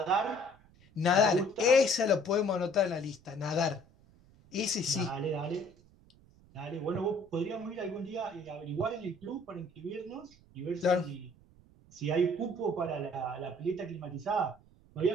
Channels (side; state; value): right; noise; rumble, 27 dB below the sound